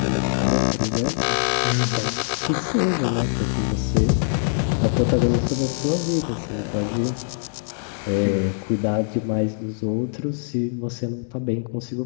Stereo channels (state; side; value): silent; right; 63 dB below the other